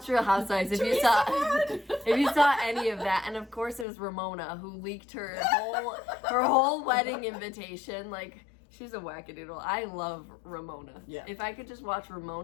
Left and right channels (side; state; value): right; drops out; at 3.9 s